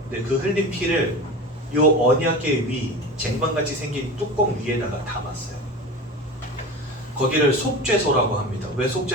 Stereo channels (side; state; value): both; normal; correlation 0.31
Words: 근데 그 흘린 피를 요 언약궤 위 쟁반같이 생긴 뚜껑 위에다가 담았어요. 거기를 속죄소라고 합니다. 왜